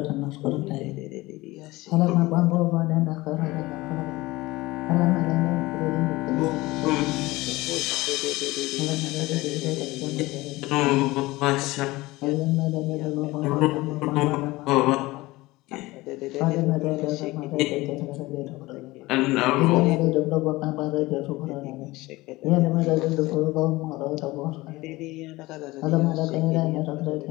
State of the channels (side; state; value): right; quieter; 20.2 dB